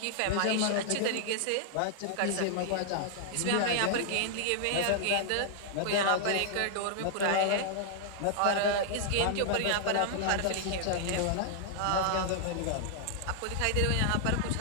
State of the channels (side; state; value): both; different; correlation -0.01